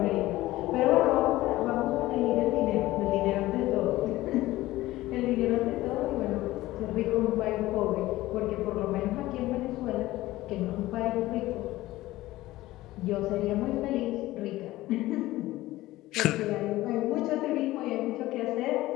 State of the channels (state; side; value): quieter; right; 17.1 dB